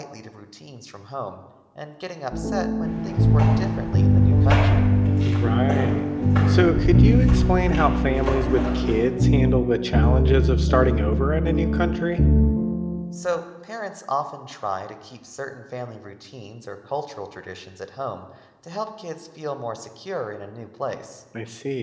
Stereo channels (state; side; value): identical; both; correlation 1.00